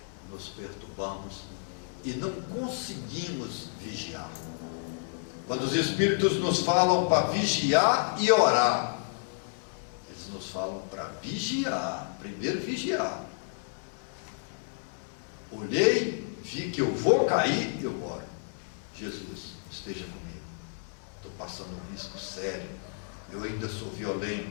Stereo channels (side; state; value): right; silent; digital silence